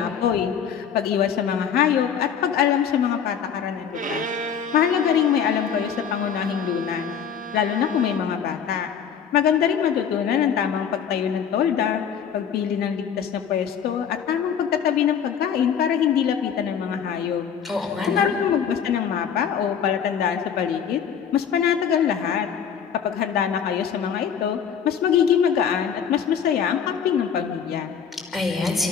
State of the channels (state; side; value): quieter; right; 7.7 dB